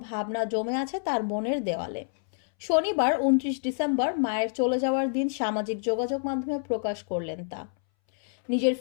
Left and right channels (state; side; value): silent; right; 60 dB below the other